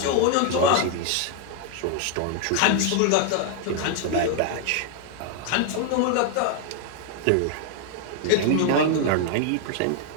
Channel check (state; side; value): different; both; correlation 0.00